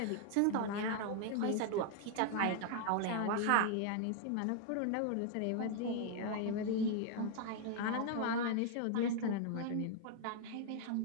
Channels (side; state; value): both; different; correlation 0.00